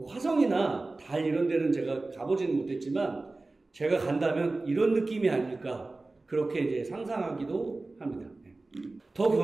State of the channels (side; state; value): left; quieter; 3.2 dB